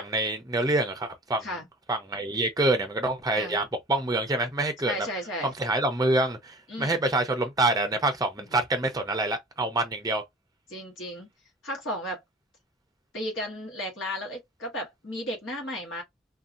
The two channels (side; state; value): both; normal; correlation 0.41